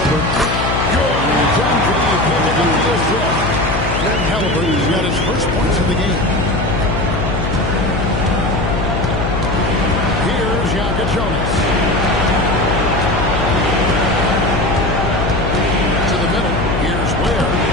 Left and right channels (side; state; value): left; noise; hum, 3 dB below the sound